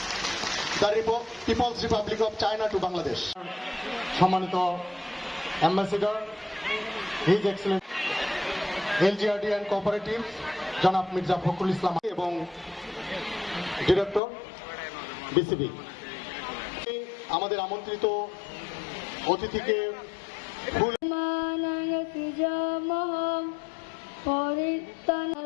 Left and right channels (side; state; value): right; drops out; at 14.2 s